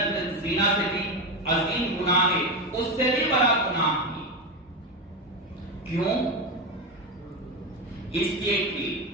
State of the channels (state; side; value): normal; both; correlation 0.15